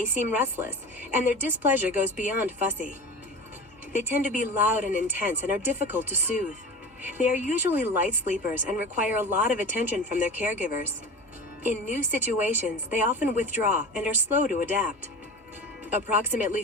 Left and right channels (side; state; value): both; normal; correlation 0.32